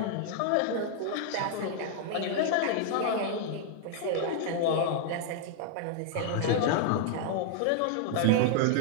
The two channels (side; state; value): both; different; correlation -0.01